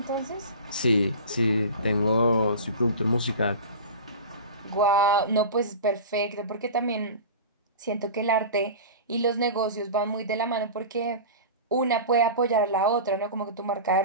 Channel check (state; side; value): inverted; both; correlation -0.32